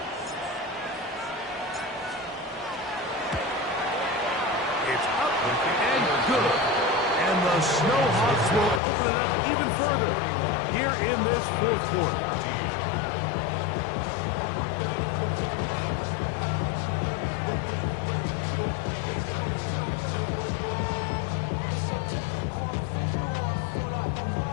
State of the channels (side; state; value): right; drops out; at 8.8 s